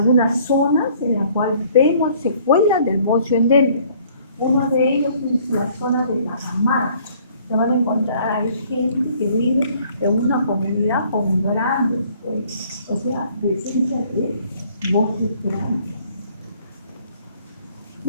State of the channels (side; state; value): both; inverted; correlation -0.59